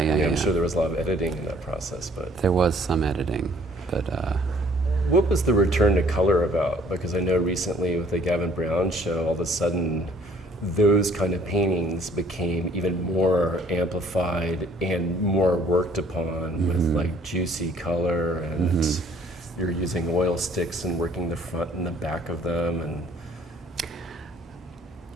sure there was a lot of editing in that process, but there was some editing, but. What was the return to color about? Because I know recently with the Gavin Brown show, all of a sudden, those kind of paintings became even more amplified and more worked upon with like juicy color, and you're using oil sticks and working the front and the back of them. And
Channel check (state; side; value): normal; both; correlation 0.59